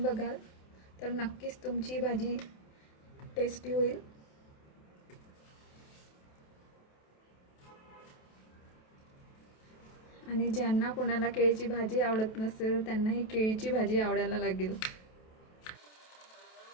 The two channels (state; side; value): late; right; 28 ms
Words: बघाल तर नक्कीच तुमची भाजी टेस्टी होईल. आणि ज्यांना कोणाला केळीची भाजी आवडत नसेल त्यांना ही केळीची भाजी आवडायला लागेल.